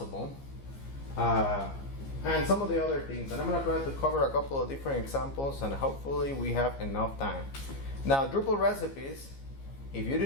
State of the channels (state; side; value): late; right; 15 ms